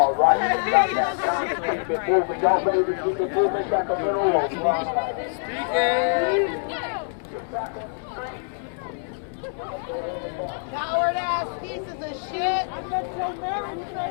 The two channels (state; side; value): silent; right; digital silence